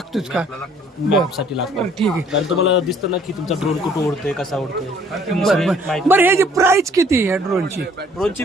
का? साठी लागतं. ठीक आहे. कारण तुम्हाला दिसतं ना की तुमचा ड्रोन कुठं उडतोय, कसा उडतोय. बरं ह्याची प्राइस किती आहे ड्रोनची? ड्रोनची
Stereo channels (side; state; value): both; normal; correlation 0.59